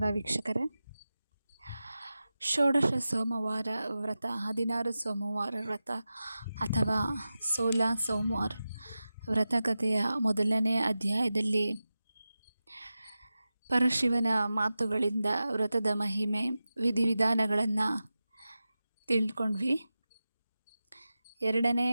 ವೀಕ್ಷಕರೇ. ಷೋಡಶ ಸೋಮವಾರ ವ್ರತ, 16 ಸೋಮವಾರ ವ್ರತ ಅಥವಾ 16 ಸೋಮವಾರ ವ್ರತಕಥೆಯ ಮೊದಲನೇ ಅಧ್ಯಾಯದಲ್ಲಿ ಪರಶಿವನ ಮಾತುಗಳಿಂದ ವ್ರತದ ಮಹಿಮೆ, ವಿಧಿವಿಧಾನಗಳನ್ನು ತಿಳ್ಕೊಂಡ್ವಿ. ಎರಡನೇ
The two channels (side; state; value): both; inverted; correlation -0.94